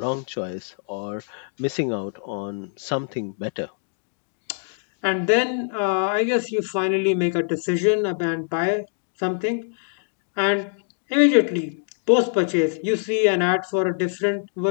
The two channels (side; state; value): right; silent; digital silence